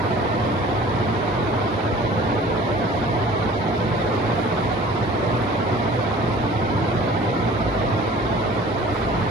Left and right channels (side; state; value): both; normal; correlation 0.47